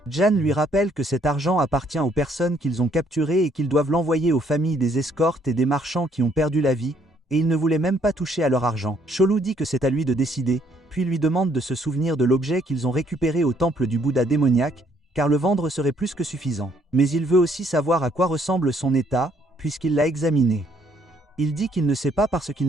Jan lui rappelle que cet argent appartient aux personnes qu'ils ont capturées et qu'ils doivent l'envoyer aux familles des escortes et des marchands qui ont perdu la vie, et il ne voulait même pas toucher à leur argent. Cholu dit que c'est à lui de décider, puis lui demande de se souvenir de l'objet qu'ils ont récupéré au temple du Bouddha démoniaque, car le vendre serait plus que suffisant. Mais il veut aussi savoir à quoi ressemble son état, puisqu'il l'a examiné. Il dit qu'il ne sait pas parce qu'il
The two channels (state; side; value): normal; both; correlation 0.67